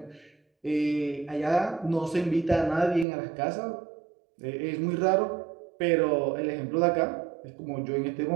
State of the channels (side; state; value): left; drops out; at 3.1 s